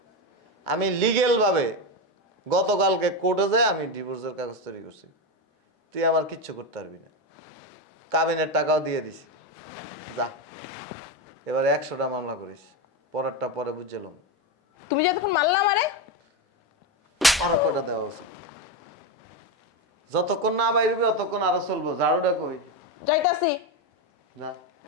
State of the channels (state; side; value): normal; both; correlation 0.13